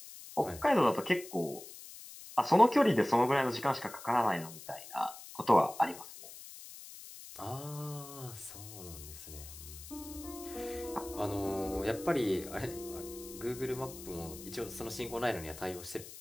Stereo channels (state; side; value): noise; left; hiss, 15 dB below the sound